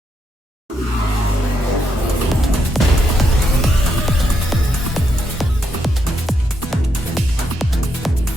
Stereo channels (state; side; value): normal; both; correlation 0.79